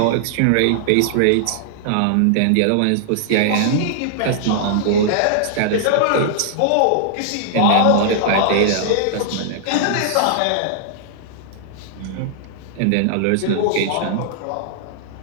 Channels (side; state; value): both; different; correlation -0.01